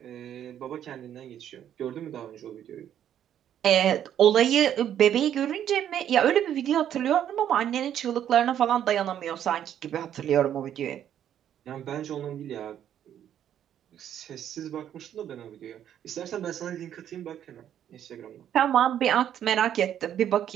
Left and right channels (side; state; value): left; quieter; 10.2 dB